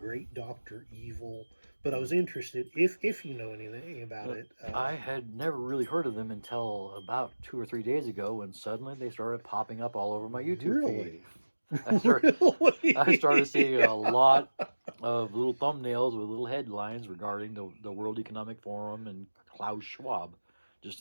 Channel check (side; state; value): both; inverted; correlation -1.00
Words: Dr. Evil. But I was interested, if you know anything about it. I had never really heard of them until about 2 or 3 days ago, when suddenly they started popping up all over my YouTube feed. I started seeing a lot of little thumbnails with little headlines regarding the World Economic Forum and Klaus Schwab just